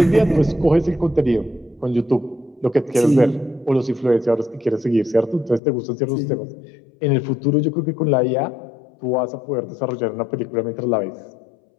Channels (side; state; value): right; drops out; at 5.6 s